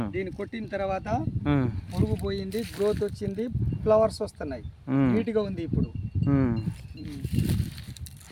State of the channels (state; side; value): identical; both; correlation 1.00